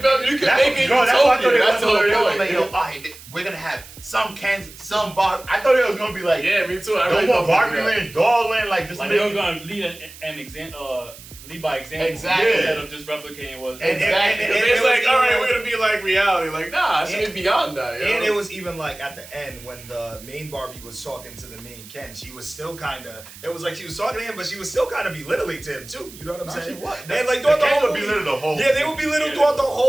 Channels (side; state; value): right; noise; hiss, 18 dB below the sound